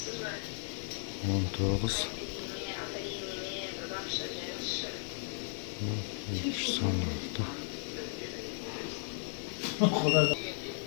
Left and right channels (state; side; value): silent; right; 54 dB below the other